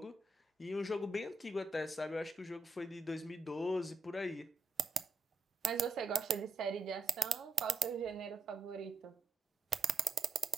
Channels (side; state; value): left; quieter; 3.2 dB